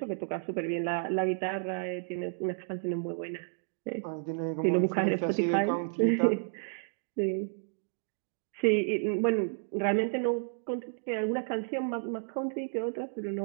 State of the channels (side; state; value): left; silent; digital silence